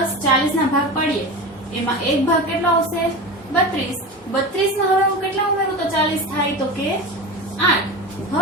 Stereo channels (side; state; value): both; normal; correlation 0.27